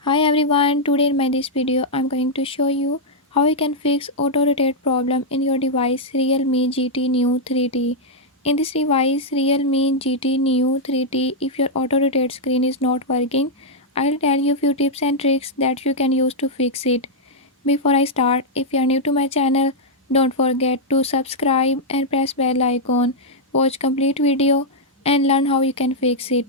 Hi everyone, today in my this video I'm going to show you how you can fix auto rotate problem in your device Realme GT Neo 3T. In this device Realme GT Neo 3T, if your auto rotate screen is not working, I'll tell you few tips and tricks that you can use to fix it. Before I start, if you are new to my channel, don't forget to subscribe and press bell icon. Watch complete video and learn how you can fix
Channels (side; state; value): both; normal; correlation -0.05